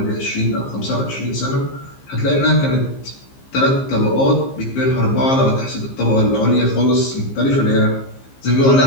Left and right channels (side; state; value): right; late; 15 ms